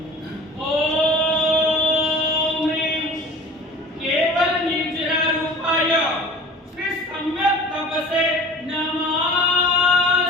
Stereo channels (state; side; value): normal; both; correlation 0.42